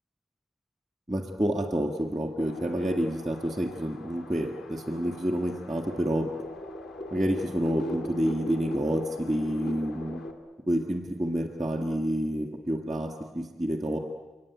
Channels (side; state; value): both; normal; correlation 0.90